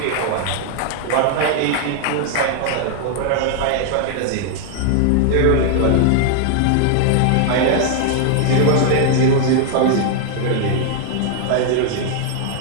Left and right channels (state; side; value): different; both; correlation 0.00